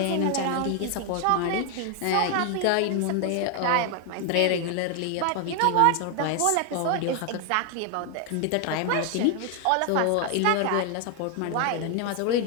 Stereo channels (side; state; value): both; different; correlation 0.00